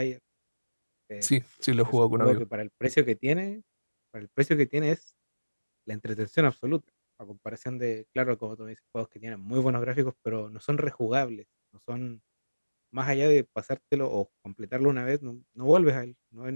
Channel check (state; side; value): inverted; both; correlation -1.00